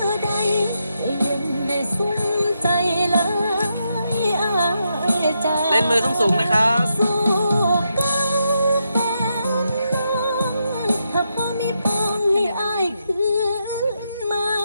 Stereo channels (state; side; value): inverted; both; correlation -0.82